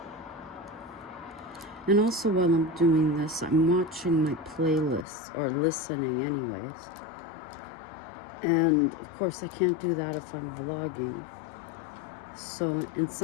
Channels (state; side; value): drops out; right; at 5.1 s